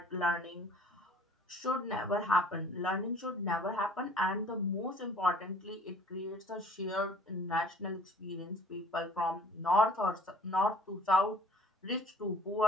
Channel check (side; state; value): both; normal; correlation 0.53